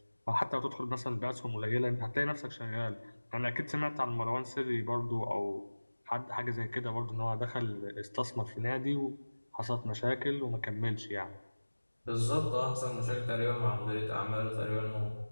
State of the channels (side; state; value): both; inverted; correlation -1.00